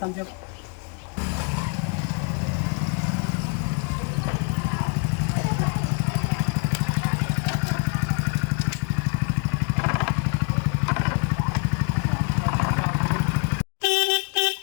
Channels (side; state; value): right; quieter; 38.2 dB